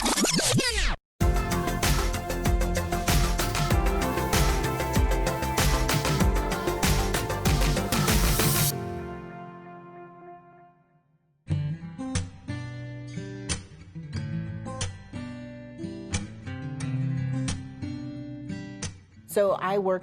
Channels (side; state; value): both; identical; correlation 1.00